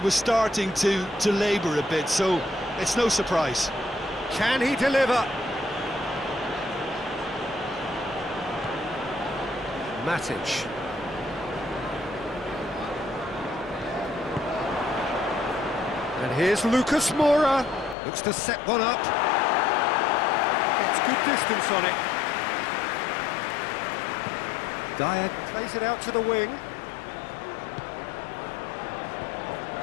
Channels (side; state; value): right; drops out; at 17.9 s